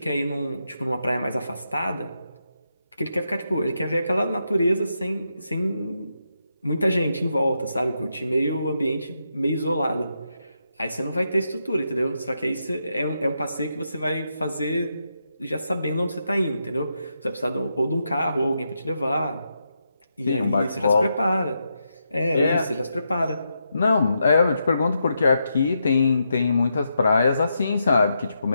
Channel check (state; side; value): inverted; both; correlation -0.83